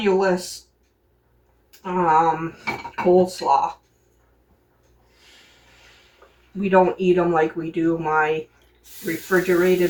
coleslaw. We don't eat them like we do my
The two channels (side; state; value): both; identical; correlation 1.00